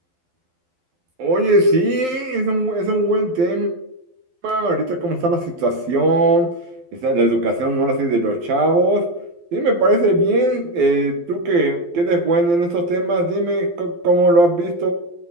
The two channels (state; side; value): late; left; 12 ms